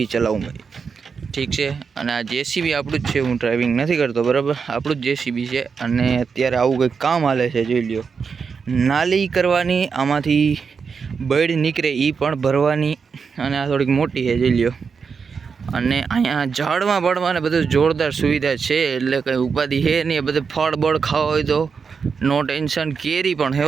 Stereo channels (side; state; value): left; quieter; 5.7 dB